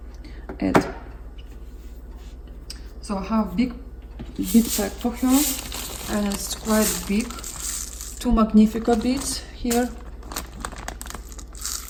add. So I have big pack for her, and it's quite big. 2 Magnifica beads here,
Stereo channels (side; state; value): both; identical; correlation 1.00